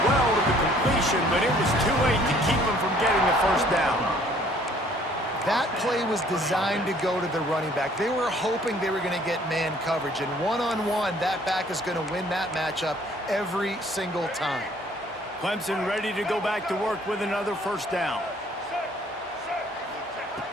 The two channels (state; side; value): normal; both; correlation 0.58